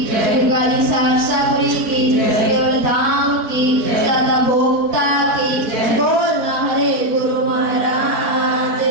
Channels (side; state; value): left; late; 4.5 ms